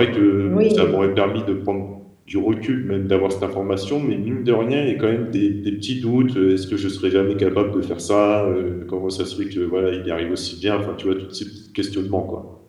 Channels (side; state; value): both; identical; correlation 1.00